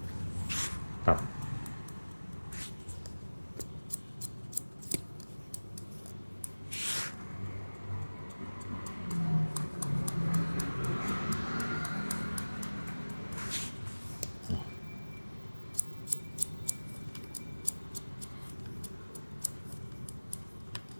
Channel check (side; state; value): both; inverted; correlation -1.00